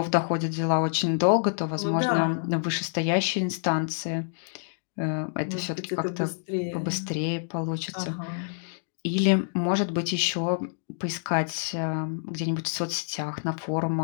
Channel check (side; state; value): right; silent; digital silence